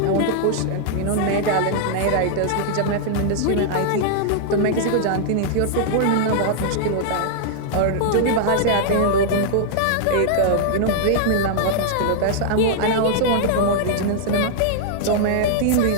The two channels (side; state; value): both; different; correlation -0.01